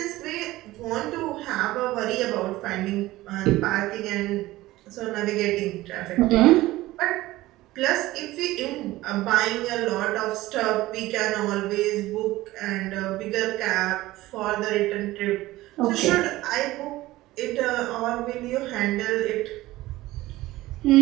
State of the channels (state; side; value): quieter; left; 17.5 dB